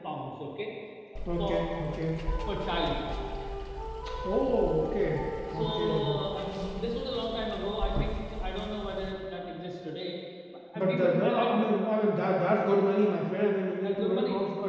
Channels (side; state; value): both; identical; correlation 1.00